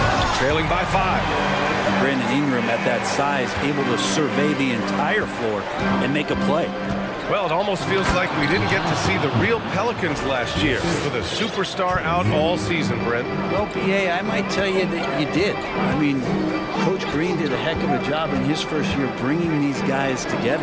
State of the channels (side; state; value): both; identical; correlation 1.00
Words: trailing by 5. Brandon Ingram at that size, able to survey the entire floor and make a play. Well, it almost feels like we didn't get to see the real Pelicans last year with a superstar out all season, Brent. Well, B.A., I might tell you that you did. I mean, Coach Green did a heck of a job in his first year bringing these guys